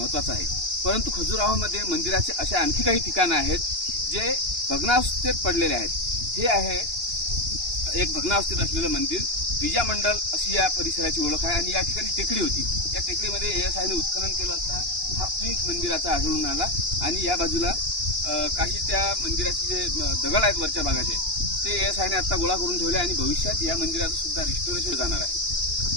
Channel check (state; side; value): late; left; 2.8 ms